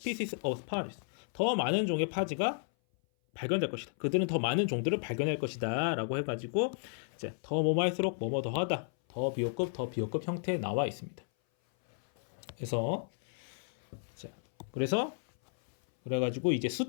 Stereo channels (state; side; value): silent; right; 56 dB below the other